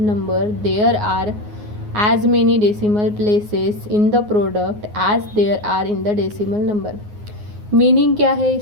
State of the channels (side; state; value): left; late; 9.6 ms